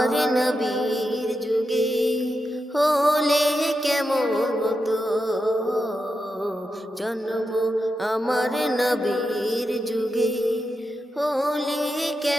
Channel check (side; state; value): both; normal; correlation 0.88